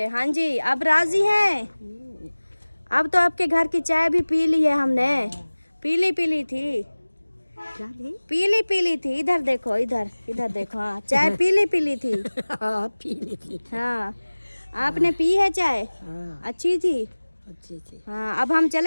हाँ जी, अब राजी हैं? अब तो आपके घर की चाय भी पी ली है हमने। पीली पीली थी, पीली पीली थी। इधर देखो, इधर इधर देखो। हाँ, चाय पीली पीली थी। पीली थी। हाँ, आपने पी है चाय? अच्छी थी, अच्छी थी। हाँ। अब हम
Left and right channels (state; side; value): inverted; both; correlation -1.00